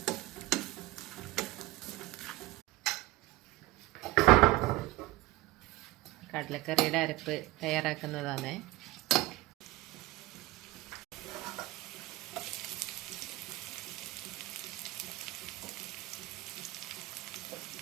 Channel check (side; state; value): left; quieter; 19.0 dB